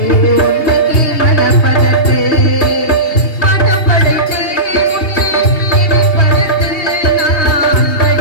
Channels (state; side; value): late; right; 2.8 ms